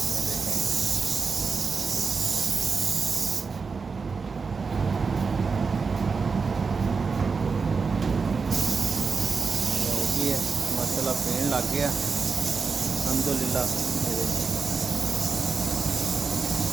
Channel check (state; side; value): quieter; left; 5.0 dB